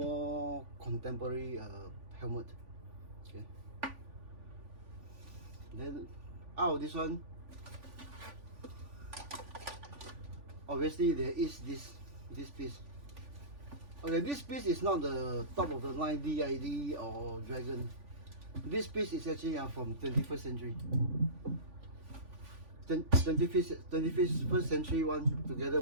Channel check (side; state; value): left; late; 3.5 ms